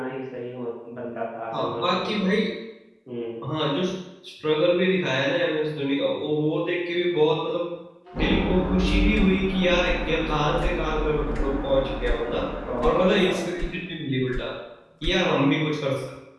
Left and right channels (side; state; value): both; identical; correlation 1.00